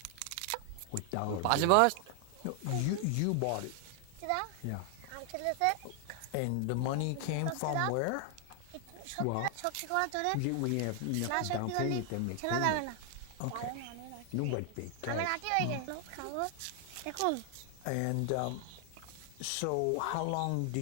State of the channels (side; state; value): both; different; correlation 0.00